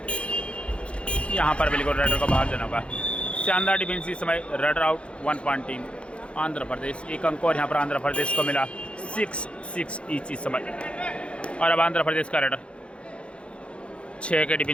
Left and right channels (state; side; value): late; right; 0.059 ms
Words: यहाँ पर बिल्कुल रेडर को बाहर जाना होगा। शानदार डिफेंस इस समय। Raid out 1 point team Andhra Pradesh, एक अंक और यहाँ पर आंध्र प्रदेश को मिला 6-6 ईच इस समय। और अब आंध्र प्रदेश का रेडर 6 के